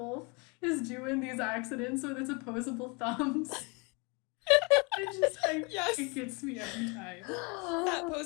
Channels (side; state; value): right; quieter; 29.8 dB